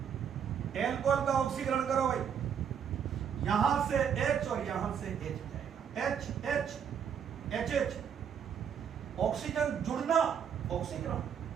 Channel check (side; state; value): left; quieter; 7.9 dB